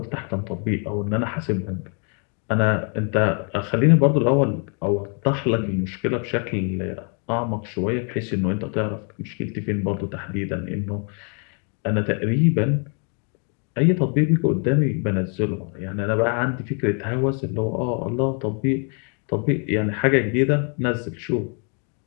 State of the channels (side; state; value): right; quieter; 39.2 dB